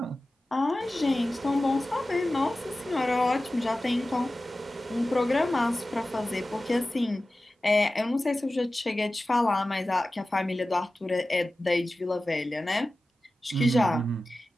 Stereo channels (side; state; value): both; normal; correlation 0.95